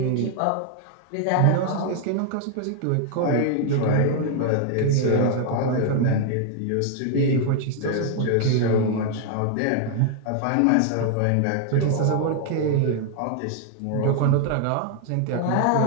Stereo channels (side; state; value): both; different; correlation 0.00